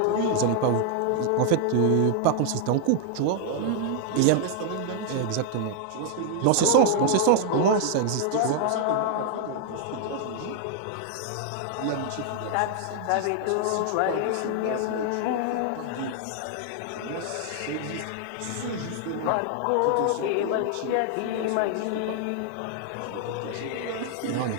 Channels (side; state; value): both; different; correlation 0.00